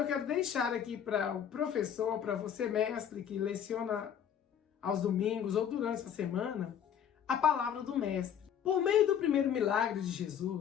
quero deixar aqui para o professor, para você mestre que leciona aos domingos ou durante a semana, a palavra do mestre. Por meio do primeiro milagre de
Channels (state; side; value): quieter; right; 8.8 dB